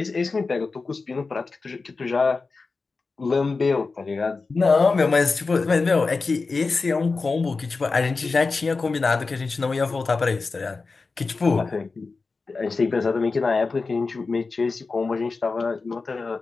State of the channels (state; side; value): quieter; right; 4.1 dB